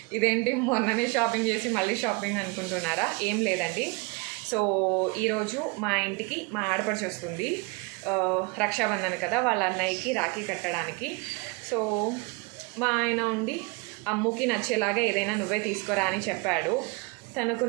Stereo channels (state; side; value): quieter; left; 28.7 dB